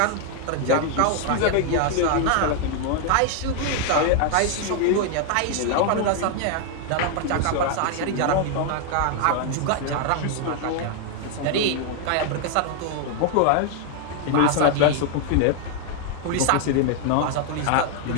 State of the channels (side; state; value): both; different; correlation 0.00